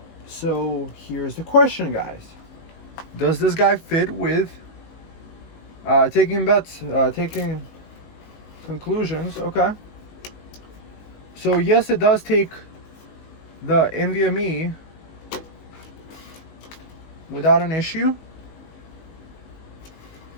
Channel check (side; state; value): right; late; 19 ms